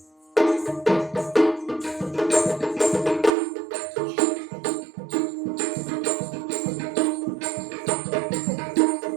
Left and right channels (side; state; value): left; drops out; at 3.3 s